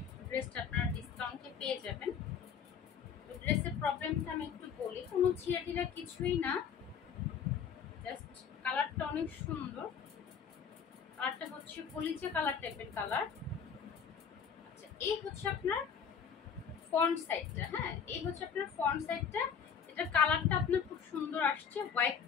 ড্রেসটা আপনারা ডিসকাউন্টে পেয়ে যাবেন। তো ড্রেসের প্রবলেমটা আমি একটু বলি, কোনো ছিঁড়া কিছুই না, জাস্ট কালারটা অনেক সুন্দর। কালারটা হচ্ছে কলিজা কালার টাইপের কালার। আচ্ছা, এই হচ্ছে আপনার ফ্রন্ট সাইডটা। হ্যাঁ, এই হচ্ছে আপনার ফ্রন্ট সাইডটা। এটা কালারটা আপনার খুব সুন্দর আসছে,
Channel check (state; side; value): quieter; right; 7.1 dB